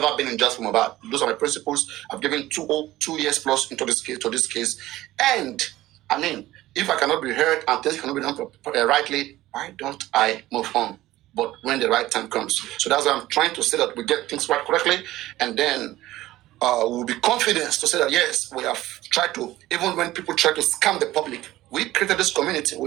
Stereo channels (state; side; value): quieter; left; 16.1 dB